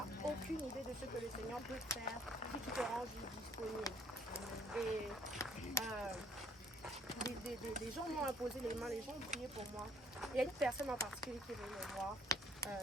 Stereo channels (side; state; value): both; normal; correlation 0.60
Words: aucune idée de ce que le Seigneur peut faire si tu te rends juste disponible. Et des gens m'ont imposé les mains, les gens ont prié pour moi. Il y a une personne en particulier qui est venue me voir.